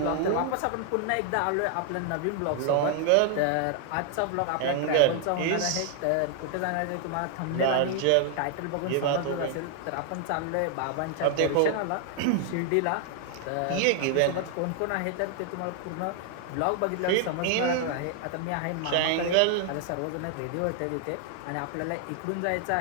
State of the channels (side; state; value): both; different; correlation 0.00